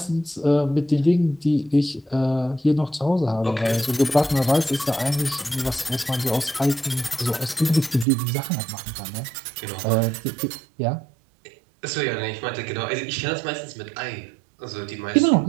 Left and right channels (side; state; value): left; drops out; at 8.1 s